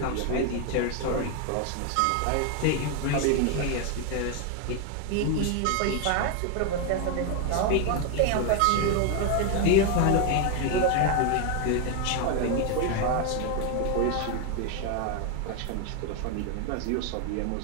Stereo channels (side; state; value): both; different; correlation 0.01